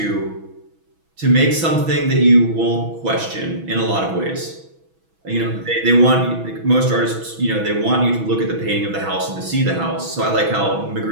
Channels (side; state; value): left; late; 6.1 ms